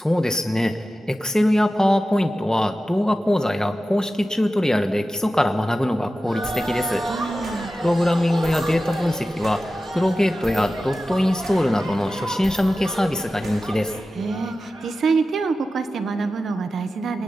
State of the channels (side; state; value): both; normal; correlation 0.94